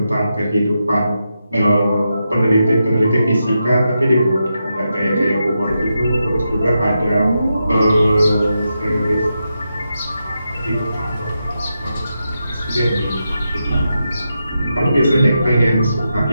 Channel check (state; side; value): inverted; both; correlation -0.87